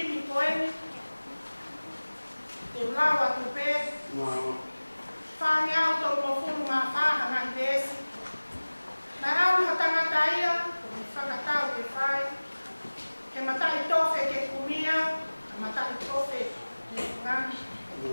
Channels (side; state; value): both; inverted; correlation -1.00